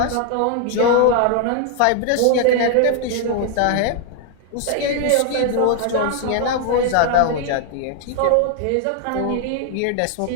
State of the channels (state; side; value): different; both; correlation 0.00